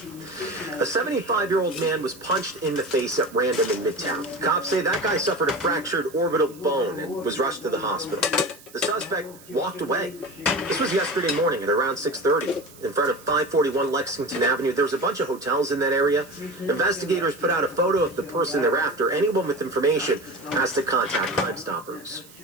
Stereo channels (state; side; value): noise; right; hiss, 22 dB below the sound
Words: A 75-year-old man was punched in the face at random in Midtown. Cops say that guy suffered a fractured orbital bone and was rushed to the hospital. The suspect walked away. This was yesterday morning at around 6:30 in front of 541 Lexington Avenue. There's a bunch of hotels in that area. Investigators put out a photo of the person they're after. Anyone with information has to contact Crime Stoppers.